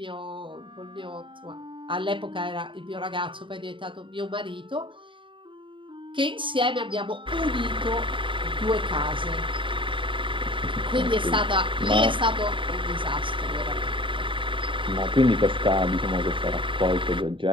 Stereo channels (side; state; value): left; late; 0.24 ms